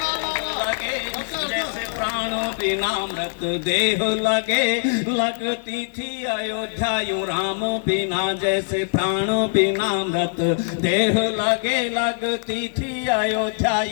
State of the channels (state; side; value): silent; right; 58 dB below the other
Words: जैसे प्राण बिना मृत देह लगे, लगती थी अयोध्या यूं राम बिना। जैसे प्राण बिना मृत देह लगे, लगती थी अयोध्या